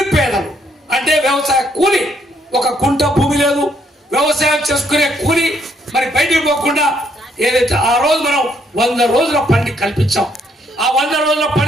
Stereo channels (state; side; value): normal; both; correlation 0.71